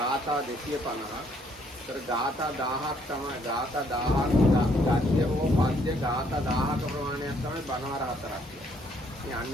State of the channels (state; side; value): normal; both; correlation 0.67